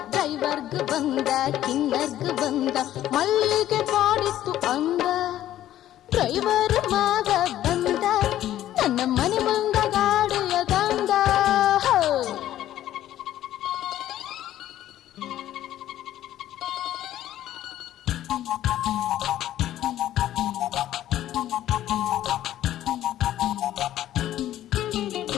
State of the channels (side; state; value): right; quieter; 12.8 dB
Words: ಡ್ರೈವರ್ಗ್ ಬಂದ, ಕಿನ್ನರ್ಗ್ ಬಂದ, ಮಲ್ಲಿಗೆ ಕಾಡಿತ್ತು ಅಂದ. ಡ್ರೈವರ್ ಮಾವ ಬಂದ, ನನ್ನ ಮನೆ ಮುಂದ ಗಾಡಿಯ ತಂದ.